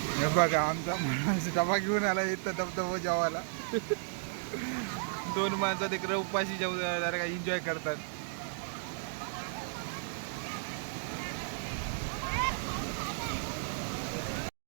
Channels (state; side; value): silent; left; digital silence